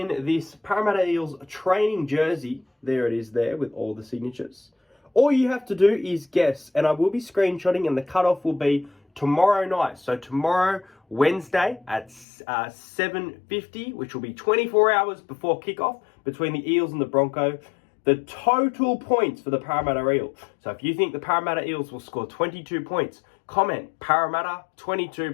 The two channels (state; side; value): drops out; right; at 12.2 s